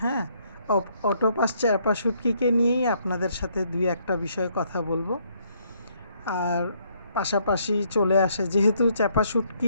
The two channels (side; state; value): both; inverted; correlation -0.69